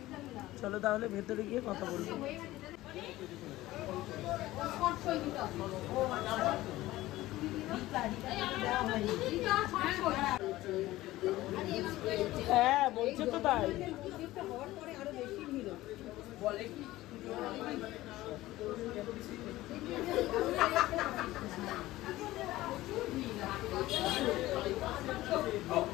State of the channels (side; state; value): right; quieter; 16.9 dB